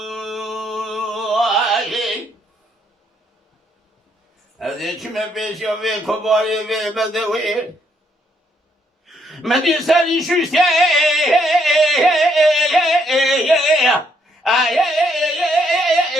هذه كم بيش يوي كباري وي بدوي مدي سالي شوشتي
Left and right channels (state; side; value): normal; both; correlation 0.72